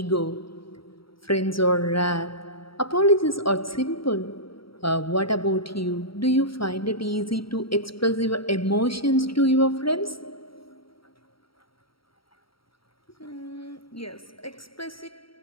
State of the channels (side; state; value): right; late; 0.75 ms